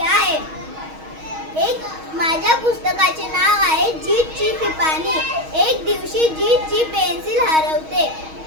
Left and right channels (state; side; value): late; left; 6.3 ms